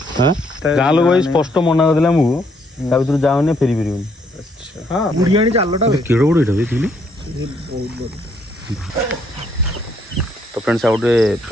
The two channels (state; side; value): normal; both; correlation 0.71